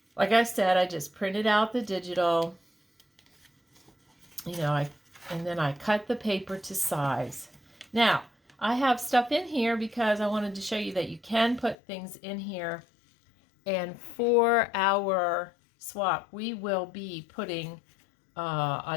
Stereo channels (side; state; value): right; drops out; at 11.8 s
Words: like I said, I just printed out the digital, and then I cut the paper to size. Now, I have stuff in here because I wanted to show you that you can put things in here. And for our swap, we will be putting